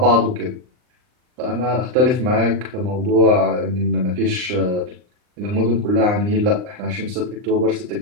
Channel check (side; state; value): left; late; 39 ms